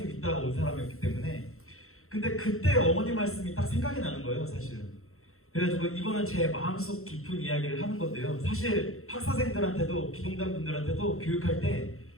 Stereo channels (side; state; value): right; late; 0.62 ms